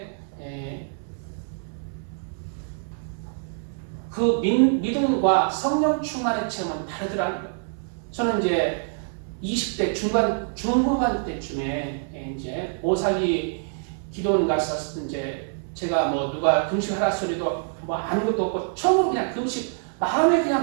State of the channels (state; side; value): silent; left; 61 dB below the other